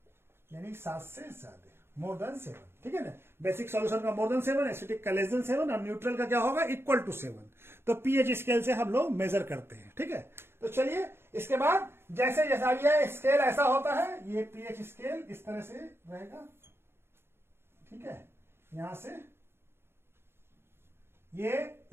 यानी 7 से ज्यादा, मोर देन 7, ठीक है ना। बेसिक सॉल्यूशन का मोर देन 7, एसिटिक का लेस देन 7, और न्यूट्रल का क्या होगा, इक्वल टू 7। तो पीएच स्केल से हम लोग मेजर करते हैं, ठीक है। तो चलिए इसके बाद जैसे जैसा ये स्केल ऐसा होता है, ये पीएच स्केल इस तरह से रहेगा, ठीक है, यहां से ये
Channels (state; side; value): late; left; 0.11 ms